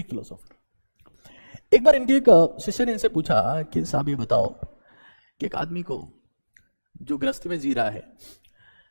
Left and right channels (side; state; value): both; inverted; correlation -1.00